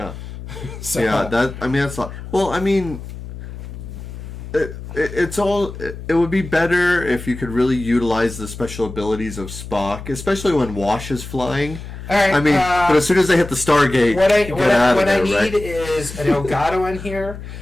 So, that's a lot. Well, it would be better if you could really utilize the special abilities of Spock, especially when Wash is flying. All right, but as soon as they hit the Stargate, what I need is an Elgato in here,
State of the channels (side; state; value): left; noise; hum, 11 dB below the sound